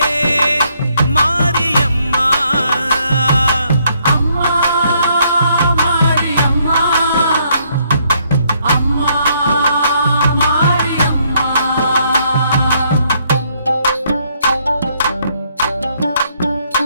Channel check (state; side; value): inverted; both; correlation -0.70